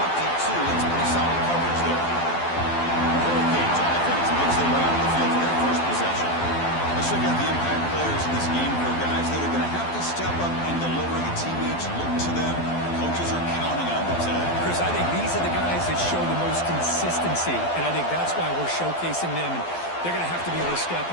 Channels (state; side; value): late; right; 12 ms